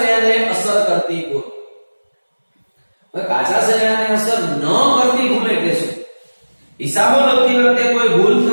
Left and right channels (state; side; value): inverted; both; correlation -1.00